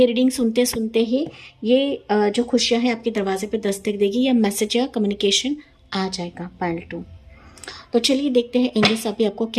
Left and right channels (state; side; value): identical; both; correlation 1.00